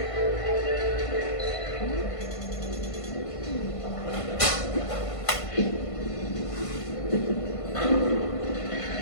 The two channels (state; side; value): late; right; 1.5 ms